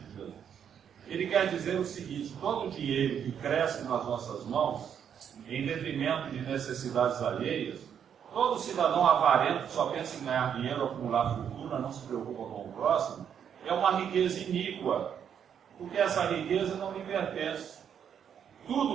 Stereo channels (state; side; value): quieter; left; 8.3 dB